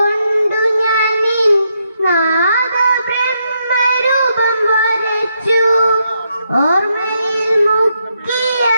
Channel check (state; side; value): inverted; both; correlation -0.79